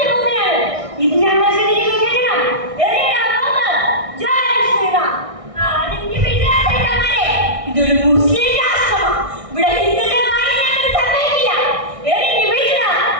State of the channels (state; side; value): late; left; 1.6 ms